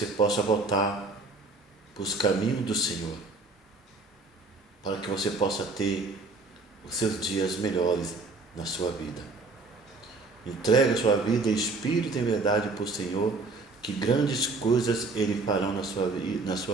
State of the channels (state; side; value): quieter; left; 3.6 dB